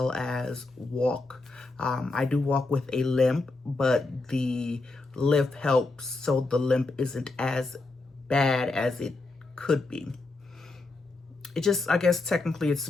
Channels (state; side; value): quieter; right; 3.4 dB